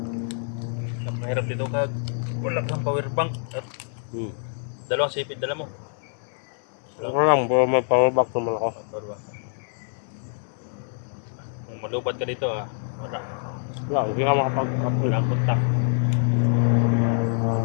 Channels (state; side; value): silent; right; 61 dB below the other